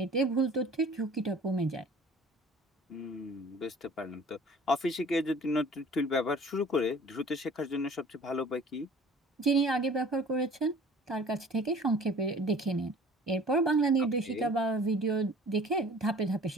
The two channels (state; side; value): normal; both; correlation 0.48